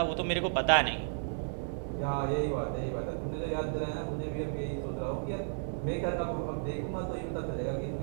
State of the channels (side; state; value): left; silent; 56 dB below the other